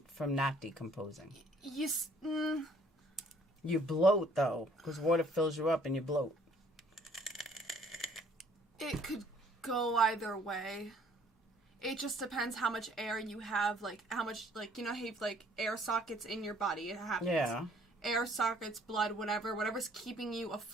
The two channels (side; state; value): both; normal; correlation 0.60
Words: from not decomposing. You bloat, though, because water fills you up and you bloat. It could go either way. It just depends how much air you have, like, how much, like, you know how you have, like, air sockets in your body. It happens. Yeah. Air sockets, blood, whatever's keeping you